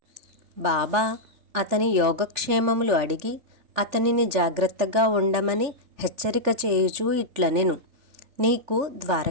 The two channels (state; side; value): late; left; 3.4 ms